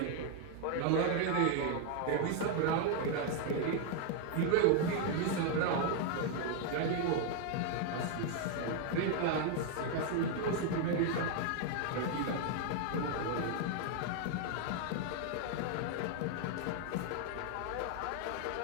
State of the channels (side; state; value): both; different; correlation 0.00